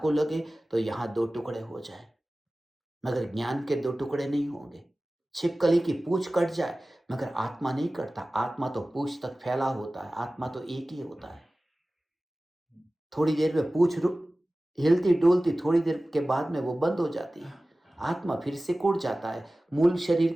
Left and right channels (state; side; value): normal; both; correlation 0.97